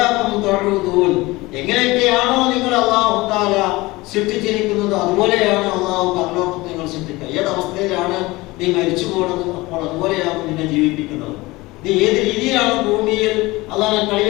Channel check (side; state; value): right; quieter; 21.1 dB